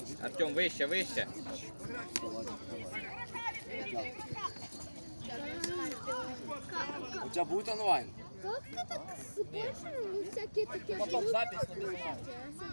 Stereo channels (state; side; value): inverted; both; correlation -1.00